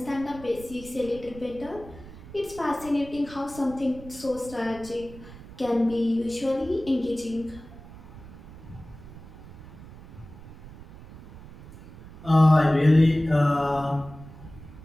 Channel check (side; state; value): right; noise; rumble, 17 dB below the sound